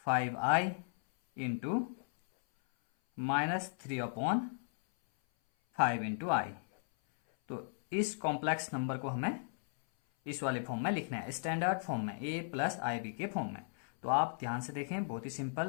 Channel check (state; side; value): silent; right; 54 dB below the other